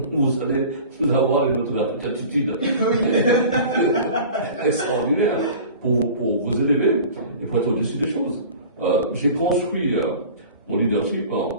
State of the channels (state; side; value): inverted; both; correlation -0.41